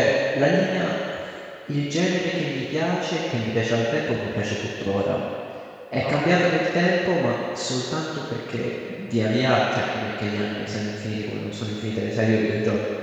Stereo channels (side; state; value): both; identical; correlation 1.00